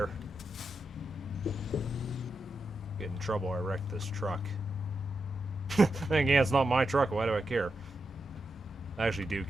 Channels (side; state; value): both; normal; correlation 0.87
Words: Get in trouble, I wrecked this truck. Then again, it's not my truck, why do I care? I actually do